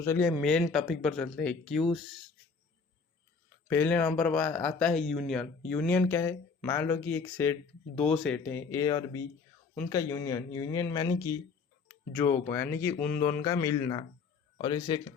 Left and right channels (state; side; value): quieter; right; 5.0 dB